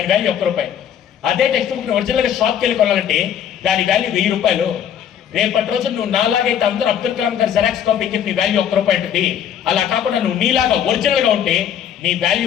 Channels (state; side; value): quieter; right; 9.2 dB